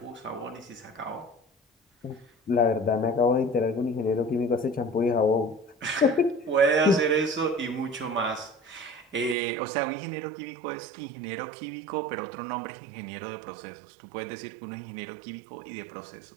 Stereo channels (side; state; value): left; drops out; at 9.3 s